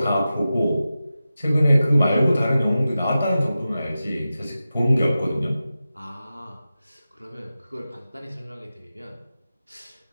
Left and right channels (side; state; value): both; inverted; correlation -0.93